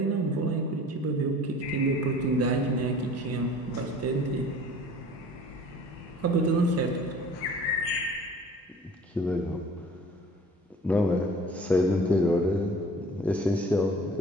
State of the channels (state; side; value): normal; both; correlation 0.46